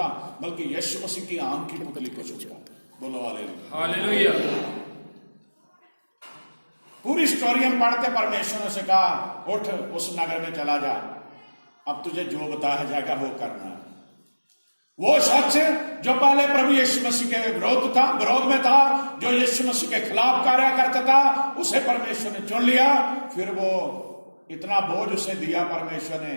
बल्कि यीशु मसीह की आंख की पुतली को छूता। बोलो हालेलुया, हालेलुया। पूरी स्टोरी हम पढ़ते, परमेश्वर ने से कहा, उठ उस नगर में चला जा, अब तुझे जो बताया जाएगा वो करना। वो शख्स जो पहले प्रभु यीशु मसीह के विरोध में था, जो यीशु मसीह के खिलाफ कार्य करता था, उसे परमेश्वर ने चुन लिया। फिर वो इतना बोझ उसे दिया परमेश्वर ने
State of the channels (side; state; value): both; inverted; correlation -1.00